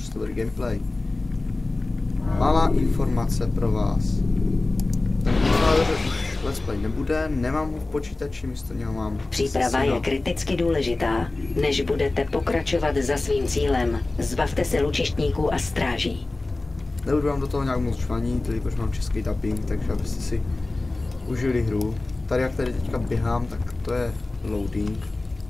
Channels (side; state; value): right; quieter; 3.0 dB